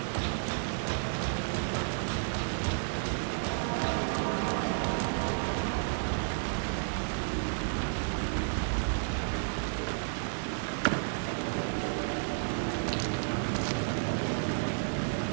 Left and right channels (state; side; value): silent; left; 57 dB below the other